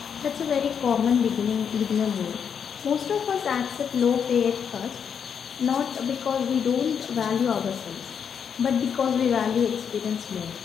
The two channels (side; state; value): right; quieter; 7.4 dB